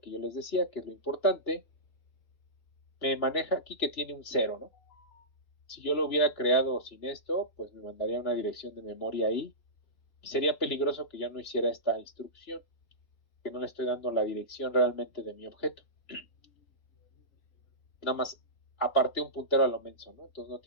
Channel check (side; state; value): right; late; 3.2 ms